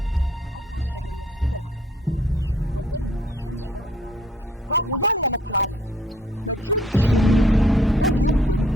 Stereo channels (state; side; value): normal; both; correlation 0.61